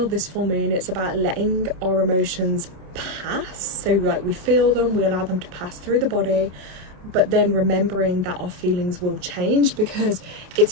this full moon, it's about letting our emotions pass. So like we feel them, we allow them to pass through the body, but then remembering that our feelings will change, because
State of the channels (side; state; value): left; late; 27 ms